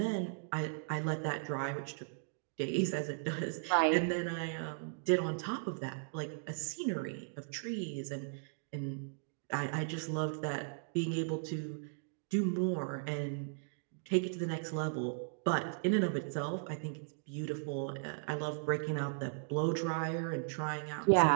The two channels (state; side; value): silent; left; digital silence